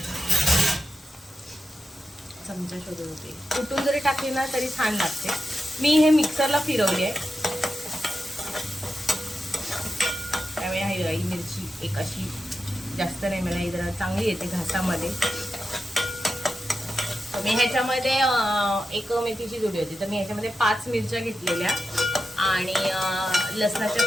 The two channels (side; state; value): both; normal; correlation 0.90